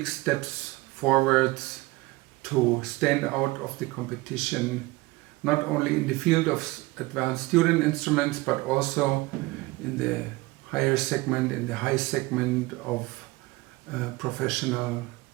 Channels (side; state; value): left; quieter; 21.5 dB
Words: steps forwards to stand out of the competition, not only in the field of advanced student instruments, but also in the higher segment, in the high segment of professional